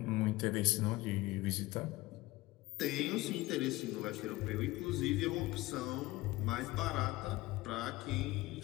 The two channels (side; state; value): right; quieter; 19.5 dB